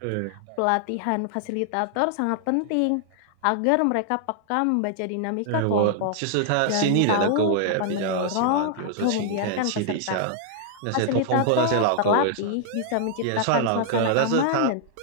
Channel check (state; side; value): different; both; correlation -0.01